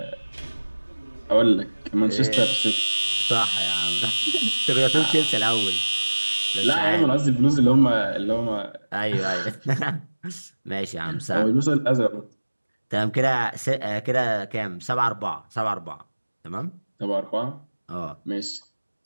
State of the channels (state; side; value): inverted; both; correlation -1.00